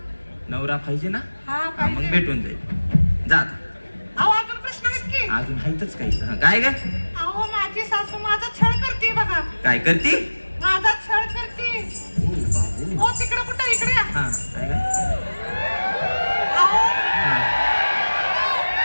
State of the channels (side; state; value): both; inverted; correlation -1.00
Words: नवरा पाहिजे ना? हा हा, मग पाहिजे. भेटून जाईल. जा आता. अहो अजून प्रश्न आहेत की? अजून हायतच काही. हा, काय ग? अहो माझी सासू माझा छळ करते बघा. काय करती? माझा छळ करते. हो तिकडे कुठं इकडे या. हा काय ग? अहो हा,